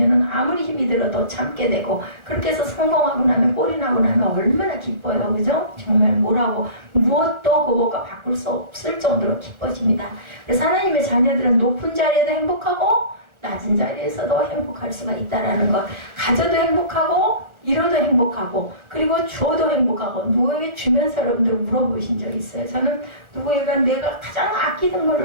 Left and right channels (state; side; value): late; left; 1.3 ms